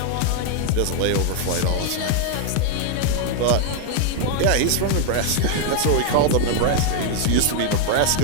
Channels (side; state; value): both; different; correlation 0.00